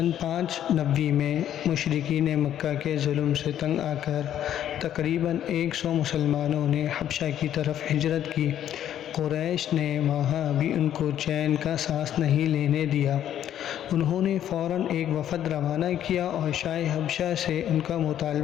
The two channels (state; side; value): quieter; right; 10.8 dB